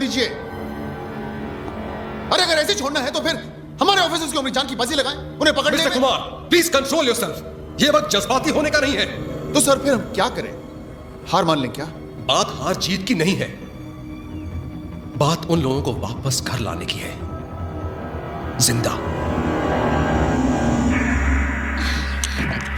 अरे अगर ऐसे छोड़ना है तो फिर हमारे ऑफिसर्स की अपनी जान की बाजी लगाएं, उन्हें पकड़ने मिस्टर में। Kumar, please control yourself. ये वक्त जज्बाती होने का नहीं है। तो सर फिर हम क्या करें? हार मान लें क्या? बात हार जीत की नहीं है, बात उन लोगों को वापस घर लाने की है, जिंदा।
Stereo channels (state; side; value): identical; both; correlation 1.00